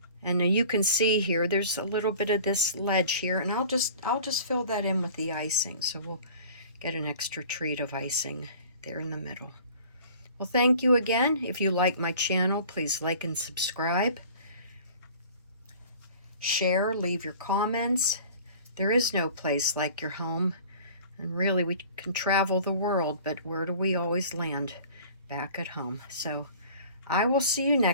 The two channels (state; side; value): inverted; both; correlation -0.45